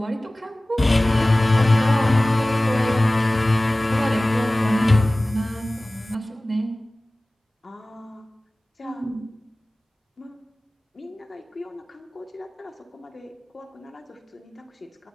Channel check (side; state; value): both; normal; correlation 0.98